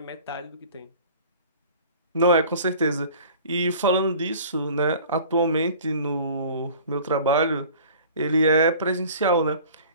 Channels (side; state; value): both; inverted; correlation -0.46